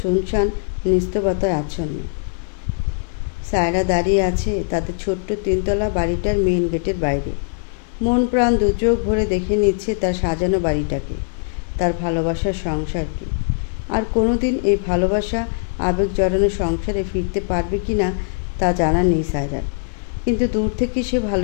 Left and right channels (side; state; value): right; silent; digital silence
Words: শুনশান, নিস্তব্ধতায় আচ্ছন্ন। সায়রা দাঁড়িয়ে আছে তাদের ছোট্ট 3তলা বাড়িটার মেইন গেটের বাইরে। মন প্রাণ দু চোখ ভরে দেখে নিচ্ছে তার সাজানো বাড়িটাকে, তার ভালোবাসার সংসারকে। আর কোনোদিন এই ভালোবাসা আবেগ জড়ানো সংসারে ফিরতে পারবে কি না তা জানা নেই সায়রার। কিন্তু দূর থেকে সে